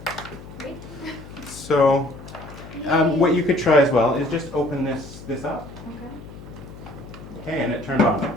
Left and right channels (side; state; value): left; noise; hum, 16 dB below the sound